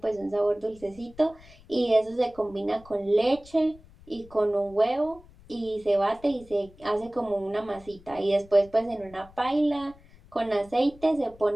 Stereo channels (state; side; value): noise; left; rumble, 24 dB below the sound